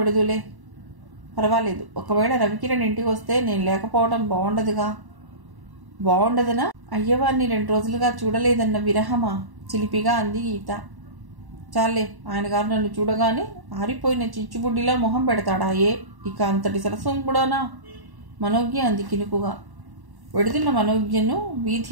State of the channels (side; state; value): left; late; 1.1 ms